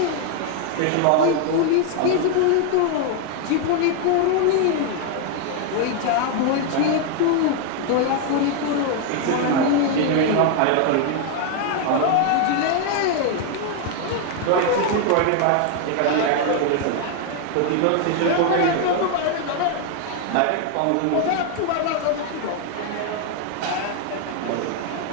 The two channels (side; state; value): both; different; correlation 0.00